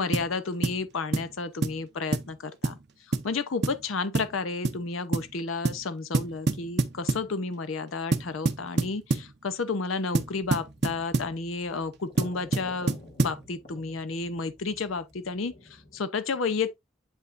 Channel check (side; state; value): both; normal; correlation 0.41